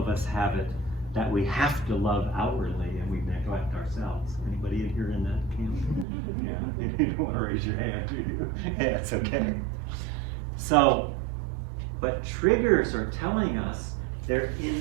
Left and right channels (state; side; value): drops out; left; at 6.1 s